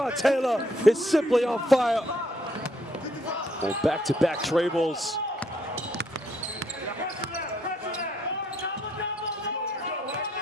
Taylor is simply on fire. Well, back-to-back trebles.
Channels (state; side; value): normal; both; correlation 0.70